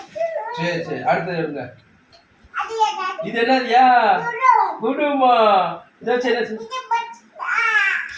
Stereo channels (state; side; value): identical; both; correlation 1.00